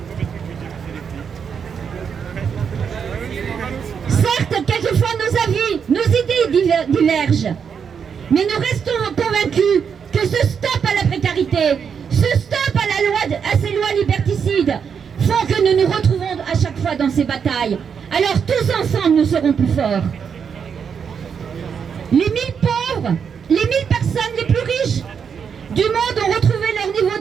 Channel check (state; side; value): quieter; left; 6.9 dB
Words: Certes, quelquefois nos avis, nos idées divergent. Mais nous restons convaincus que ce stop à la précarité, ce stop à ces lois liberticides font que nous nous retrouvons à chaque fois dans ces batailles. Alors tous ensemble, nous serons plus forts. Les 1000 pauvres, les 1000 personnes les plus riches du monde ont retrouvé leur niveau